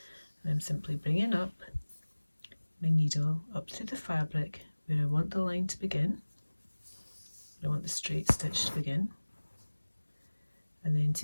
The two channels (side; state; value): both; inverted; correlation -1.00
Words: and I'm simply bringing up my needle up through the fabric where I want the line to begin, where I want the straight stitch to begin, and then